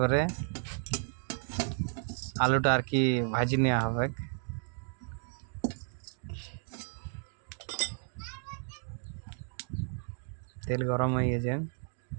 আলুটা আর কি ভাজি নেওয়া হবে। তেল গরম হয়ে গেছে,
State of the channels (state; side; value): silent; left; 56 dB below the other